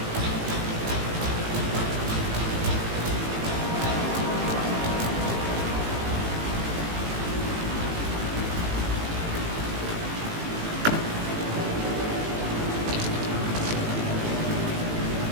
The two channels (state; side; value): late; left; 18 ms